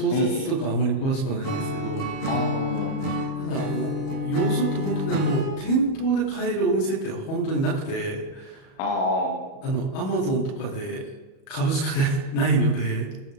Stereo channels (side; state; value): right; late; 37 ms